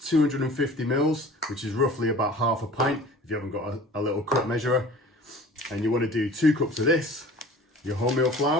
mils, which is roughly about half a pint if you haven't got a little cup measurer. And you want to do 2 cups of this, your wholemeal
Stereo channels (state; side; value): normal; both; correlation 0.44